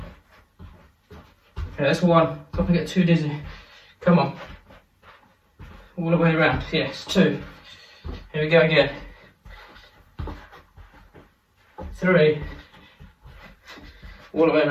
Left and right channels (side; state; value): both; identical; correlation 1.00